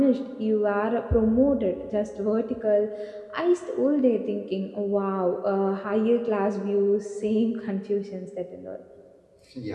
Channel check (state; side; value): identical; both; correlation 1.00